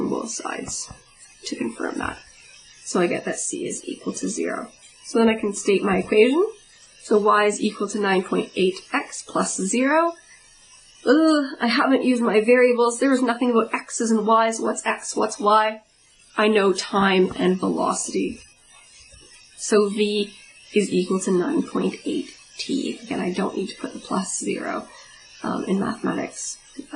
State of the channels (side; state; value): both; identical; correlation 1.00